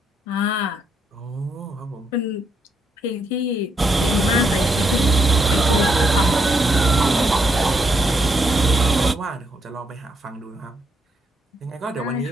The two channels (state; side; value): normal; both; correlation 0.77